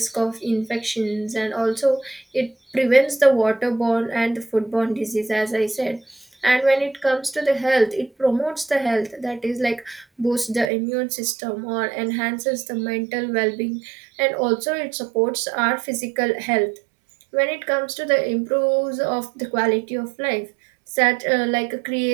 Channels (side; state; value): left; drops out; at 10.7 s